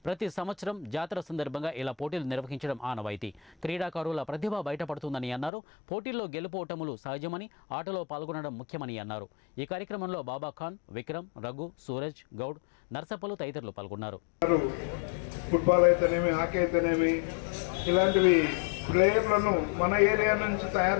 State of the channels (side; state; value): right; drops out; at 5.5 s